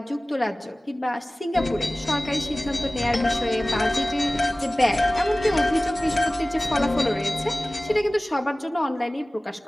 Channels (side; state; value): both; normal; correlation 0.98